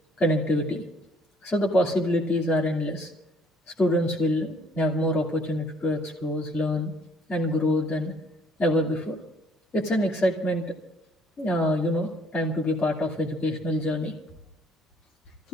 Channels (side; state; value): both; normal; correlation 0.61